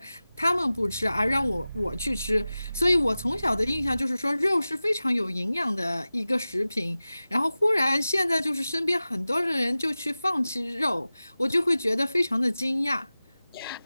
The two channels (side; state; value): both; inverted; correlation -0.96